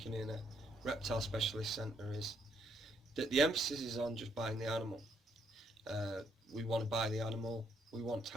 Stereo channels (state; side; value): normal; both; correlation 0.73